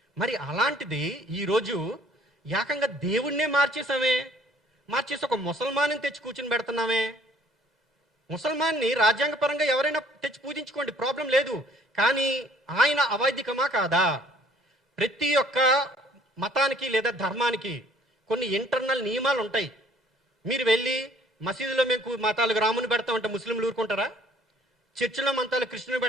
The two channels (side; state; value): both; normal; correlation 0.58